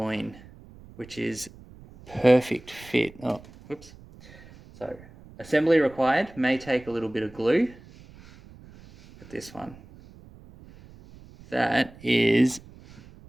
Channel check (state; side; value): noise; right; rumble, 21 dB below the sound